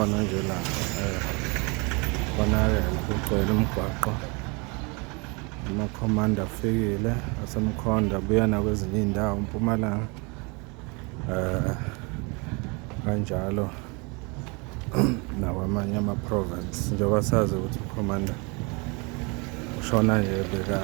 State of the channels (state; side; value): quieter; left; 30.1 dB